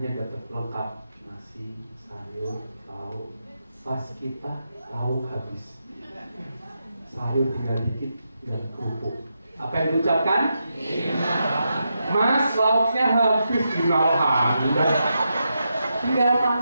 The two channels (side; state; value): both; inverted; correlation -0.85